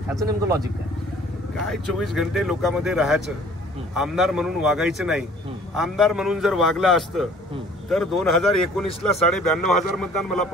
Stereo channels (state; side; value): normal; both; correlation 0.52